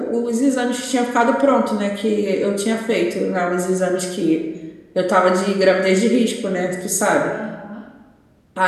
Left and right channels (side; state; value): both; identical; correlation 1.00